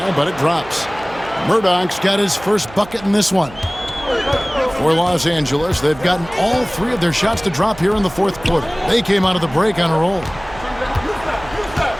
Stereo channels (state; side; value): noise; right; hum, 18 dB below the sound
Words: but it drops. Murdoch's got his first bucket in this one. For Los Angeles, they've gotten all three of their shots to drop here in the fourth quarter. They came out of the break on a roll.